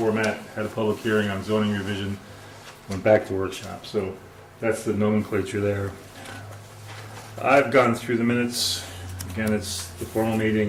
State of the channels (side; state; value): both; identical; correlation 1.00